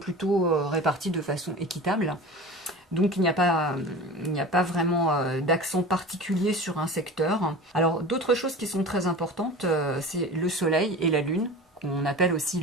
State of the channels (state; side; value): normal; both; correlation 0.35